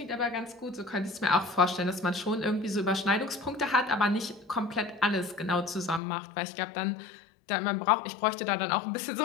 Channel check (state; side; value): drops out; right; at 6.0 s